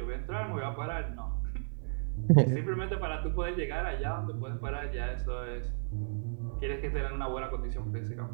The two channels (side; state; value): left; silent; 55 dB below the other